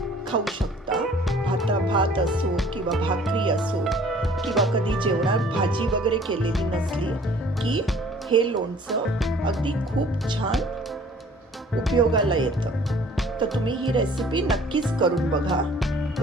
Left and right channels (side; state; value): both; normal; correlation 0.53